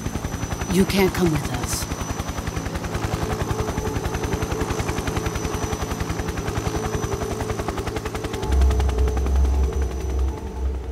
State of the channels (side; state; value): both; identical; correlation 1.00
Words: you can't come with us.